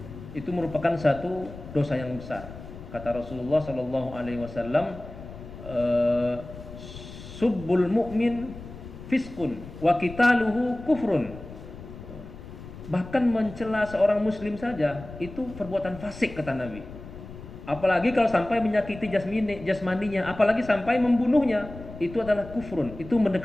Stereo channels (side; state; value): left; noise; rumble, 14 dB below the sound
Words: itu merupakan satu dosa yang besar. Kata Rasulullah Shallallahu Alaihi Wasallam, subbul mu'min fiskun wa qitaluhu kufrun. Bahkan mencela seorang Muslim saja itu perbuatan fasik, kata Nabi. Apalagi kalau sampai menyakiti jasmaninya, apalagi sampai membunuhnya, itu adalah kufrun. Itu